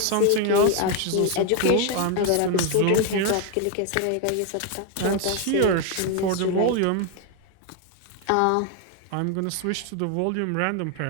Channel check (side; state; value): both; different; correlation 0.01